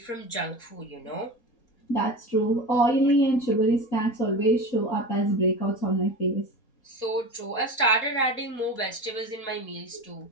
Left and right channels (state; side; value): late; right; 4.2 ms